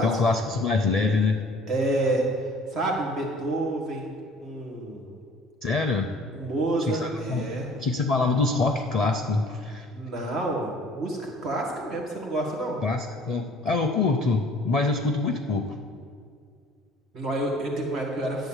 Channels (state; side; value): normal; both; correlation 0.52